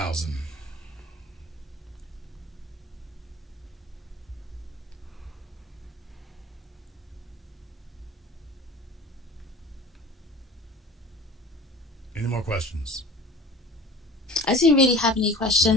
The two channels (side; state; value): both; normal; correlation 0.42